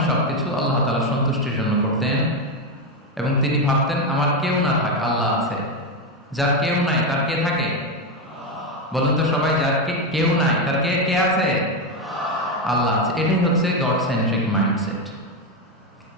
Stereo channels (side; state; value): both; normal; correlation 0.10